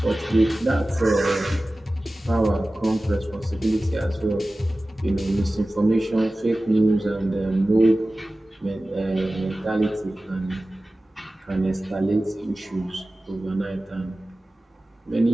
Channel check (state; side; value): normal; both; correlation 0.96